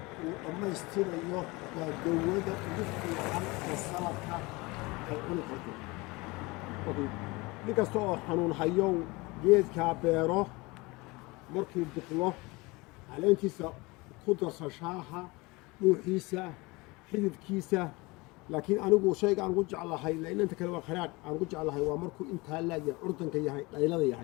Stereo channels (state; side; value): quieter; right; 24.1 dB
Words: uu dhammaystirayo waa dawada ugu fiican oo saladka ay cuni karto nin kasta oo xanuun hayow geedkaa beero markuu biqlo caleentiisa ku darso shaaha dhuuxiisa xididkiisa laakiin anigu shayga aan ugu jeclahay inta kale waa kharaadh aan ugu jeclahay waa markuu intaa laagya curdanka yahay dhaylada